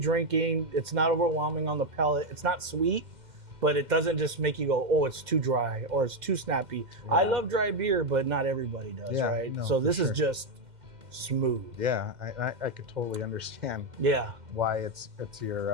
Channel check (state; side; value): late; left; 2.1 ms